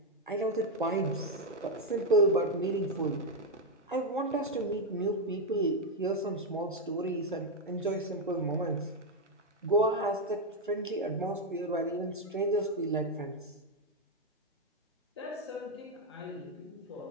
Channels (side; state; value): both; normal; correlation 0.04